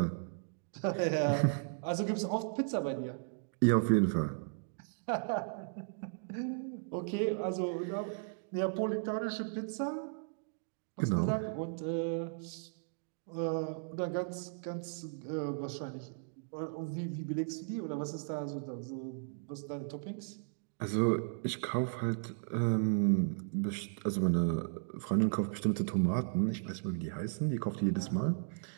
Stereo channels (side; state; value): left; silent; digital silence